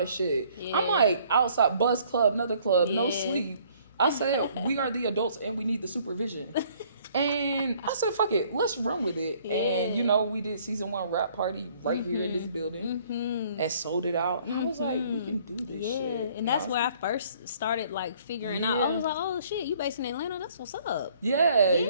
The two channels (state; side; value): inverted; both; correlation -0.60